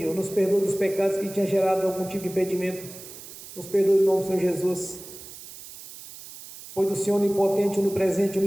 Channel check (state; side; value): noise; right; hiss, 15 dB below the sound